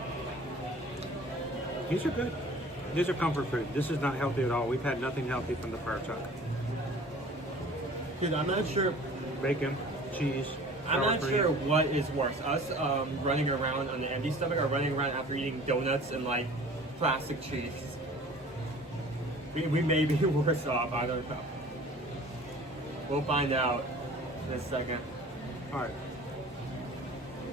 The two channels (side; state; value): both; normal; correlation 0.46